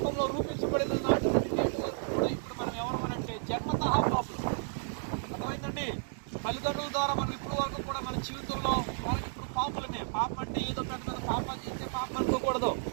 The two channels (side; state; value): left; silent; digital silence